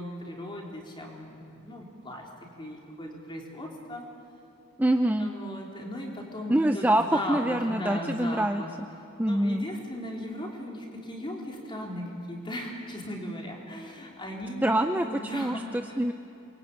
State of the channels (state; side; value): normal; both; correlation 0.83